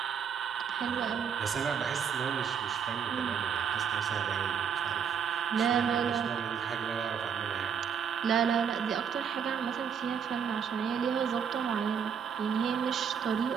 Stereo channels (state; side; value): quieter; left; 7.3 dB